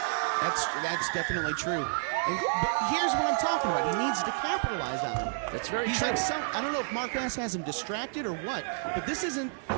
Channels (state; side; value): silent; left; 58 dB below the other